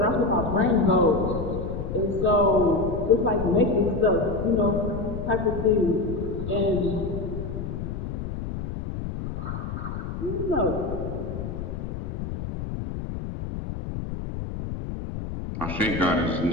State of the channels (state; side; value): noise; left; rumble, 6 dB below the sound